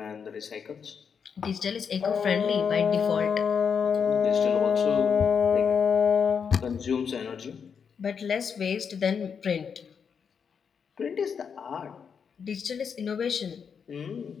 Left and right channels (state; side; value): quieter; right; 6.6 dB